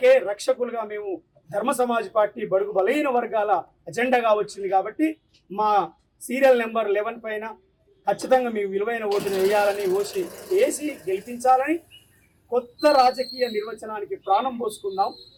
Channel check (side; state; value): both; identical; correlation 1.00